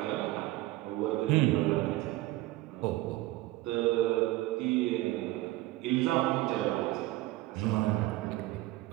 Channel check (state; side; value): quieter; left; 18.0 dB